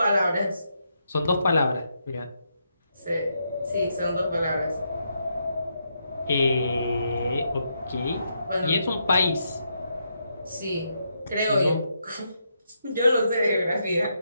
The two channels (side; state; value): both; inverted; correlation -0.80